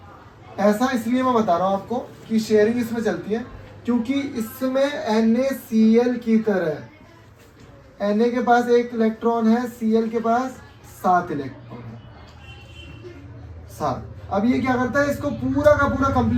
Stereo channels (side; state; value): both; identical; correlation 1.00